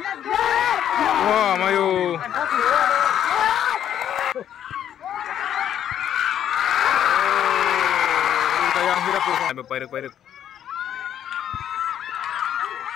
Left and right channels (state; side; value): quieter; right; 10.1 dB